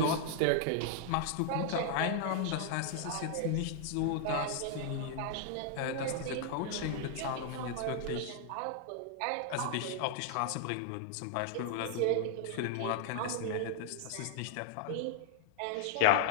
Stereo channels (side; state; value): both; different; correlation 0.00